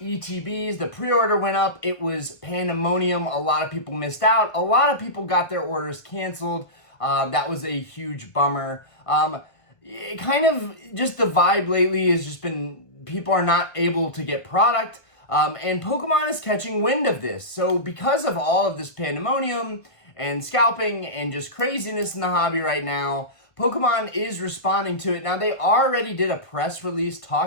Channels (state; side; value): late; right; 1.5 ms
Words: the pre-order went up. It was pandemonium. A lot of people missed out. A lot of people got their orders canceled. That was a huge bummer. It kind of just the vibe lately has just been people are not able to get product. And Pokemon is catching wind of this. So because of all of this pandemonium and scalping and just craziness in the hobby right now, Pokemon is responding to it. Now, they already did a press release